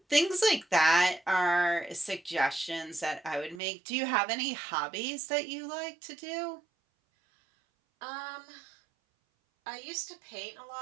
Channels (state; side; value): drops out; left; at 3.6 s